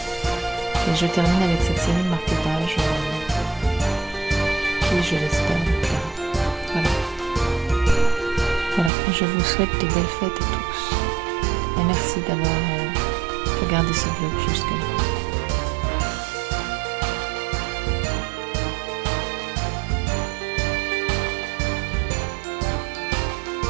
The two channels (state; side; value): drops out; left; at 8.9 s